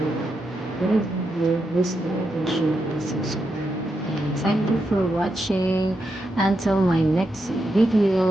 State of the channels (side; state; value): both; normal; correlation 0.84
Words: This video, this video, share, subscribe. And thank you for watching. Until my next